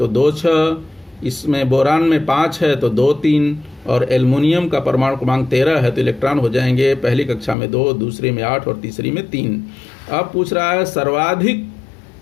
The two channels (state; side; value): drops out; right; at 7.6 s